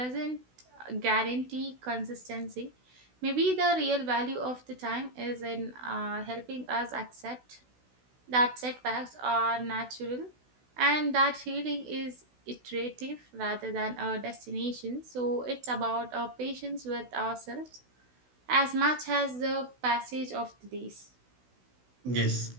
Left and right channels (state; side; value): late; left; 16 ms